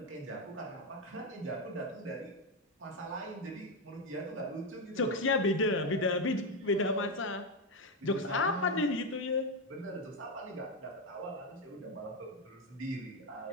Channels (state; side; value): normal; both; correlation 0.08